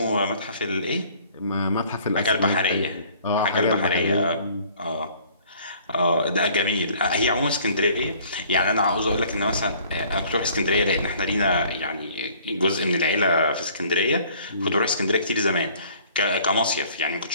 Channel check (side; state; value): both; inverted; correlation -0.55